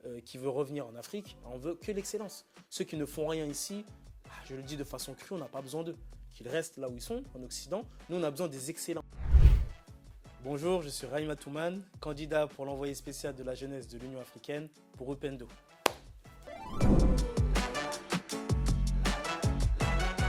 qui veut revenir en Afrique, on veut que l'excellence. Ceux qui ne font rien ici, je le dis de façon crue, on n'a pas besoin d'eux. Qu'ils restent là où ils sont, en Occident. Nous, on a besoin des excellents. Bonjour, je suis Rahima Toumane, candidat pour l'envoyé spécial de la jeunesse de l'Union africaine pour Upendo.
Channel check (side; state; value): both; identical; correlation 1.00